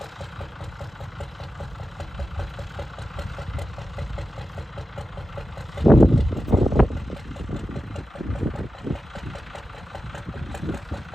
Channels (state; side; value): normal; both; correlation 0.92